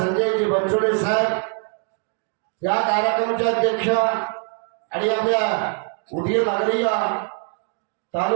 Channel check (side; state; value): left; quieter; 38.0 dB